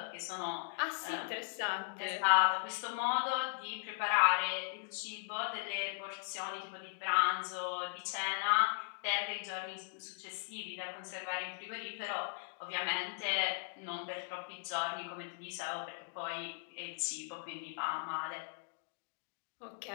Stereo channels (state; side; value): silent; right; digital silence